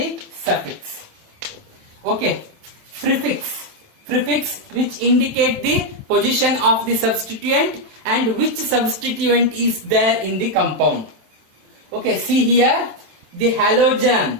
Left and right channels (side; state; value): left; late; 27 ms